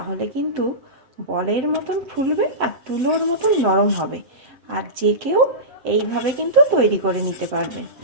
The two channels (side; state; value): left; late; 7.8 ms